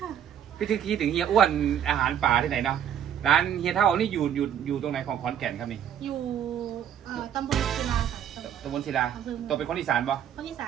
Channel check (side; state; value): left; quieter; 9.5 dB